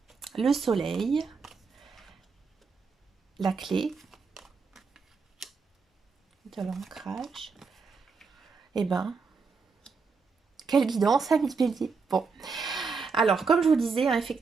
Le soleil. La clé. De l'ancrage. Quelle guidance, amis bélier. Bon. Alors, comme je vous disais,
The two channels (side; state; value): left; quieter; 4.9 dB